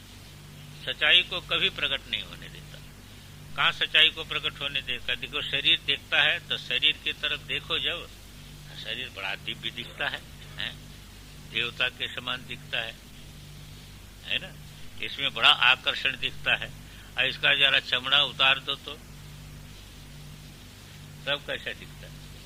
सच्चाई को कभी प्रकट नहीं होने देता। कहाँ सच्चाई को प्रकट होने देता? देखो शरीर देखता है तो शरीर की तरफ देखो, जब शरीर बड़ा दिव्य दिखता है, देवता के समान दिखता है ना, इसमें बड़ा आकर्षण दिखता है। और इसका जरा चमड़ा उतार दो तो तब कैसा दिखता है,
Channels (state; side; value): identical; both; correlation 1.00